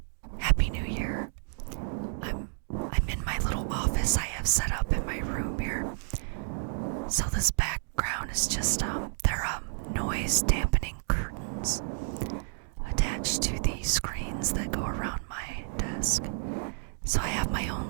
Happy New Year. I'm in my little office I have set up in my room here. So this background is just they're noise dampening curtains attached to the screens that go around my desk. So I have my own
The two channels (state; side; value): silent; left; digital silence